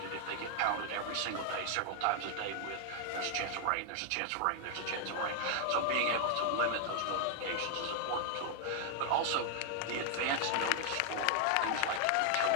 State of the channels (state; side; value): different; both; correlation 0.00